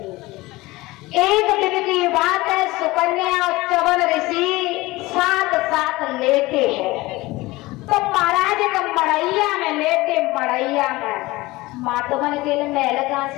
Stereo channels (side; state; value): right; quieter; 20.3 dB